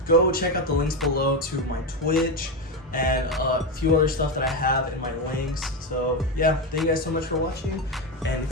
Go check out the links below to my Twitch and a few other stuff that I have in my links. So yeah, thank you guys so much for watching, and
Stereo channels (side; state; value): both; normal; correlation 0.12